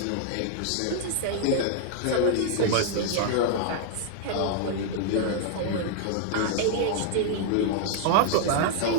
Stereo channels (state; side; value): different; both; correlation -0.01